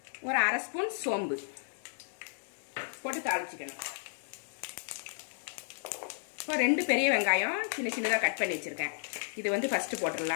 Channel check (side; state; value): right; silent; digital silence